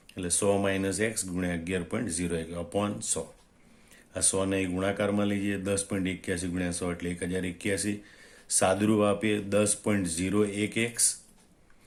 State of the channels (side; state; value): both; identical; correlation 1.00